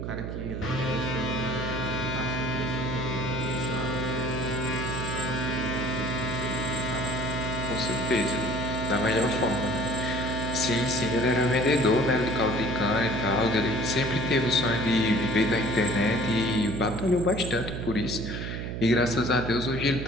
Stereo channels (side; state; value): right; noise; hum, 5 dB below the sound